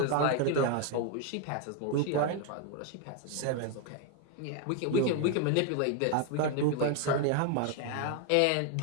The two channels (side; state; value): both; different; correlation 0.01